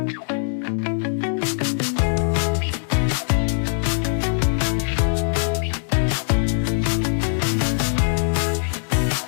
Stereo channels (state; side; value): silent; right; digital silence